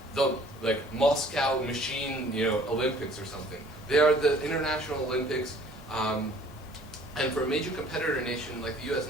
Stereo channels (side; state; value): both; normal; correlation 0.55